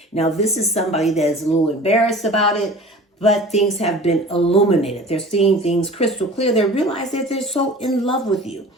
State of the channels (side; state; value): both; normal; correlation 0.41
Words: Now, this is somebody that is a little embarrassed about it, but things have been illuminated. They're seeing things crystal clear. They realize that they're so in love with you.